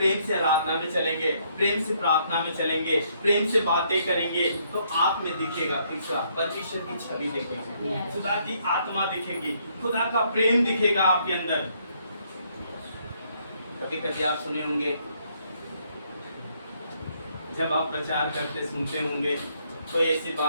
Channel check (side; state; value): both; inverted; correlation -0.70